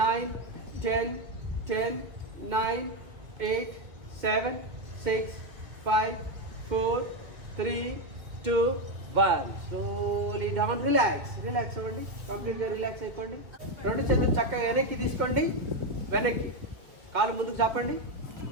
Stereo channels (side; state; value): left; late; 2.1 ms